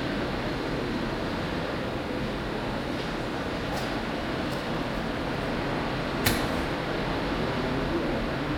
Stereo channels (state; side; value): identical; both; correlation 1.00